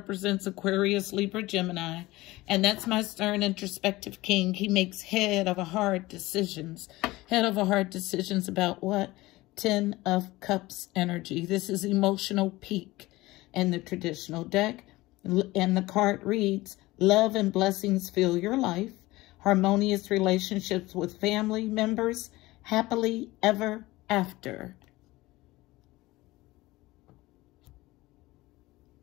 Aquarius, Libra, Gemini. And that's my stern, introspective king. He makes head over heart decisions. Head over heart decisions about what? 10 of Cups energy. This is emotional peak in the traditional deck. And the card reads, love and blessings fill your life. Harmonious relationships with family members. Happily ever after.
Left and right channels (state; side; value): quieter; right; 19.4 dB